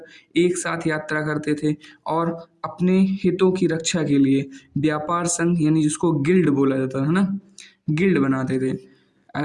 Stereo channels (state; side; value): identical; both; correlation 1.00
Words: एक साथ यात्रा करते थे, और अपने हितों की रक्षा के लिए व्यापार संघ यानी जिसको गिल्ड बोला जाता है ना, गिल्ड बनाते थे।